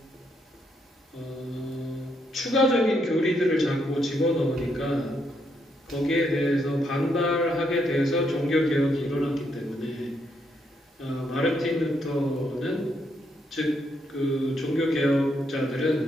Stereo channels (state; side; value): normal; both; correlation 0.76